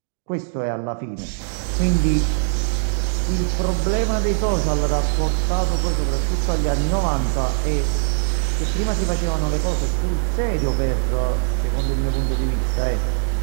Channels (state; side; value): silent; left; digital silence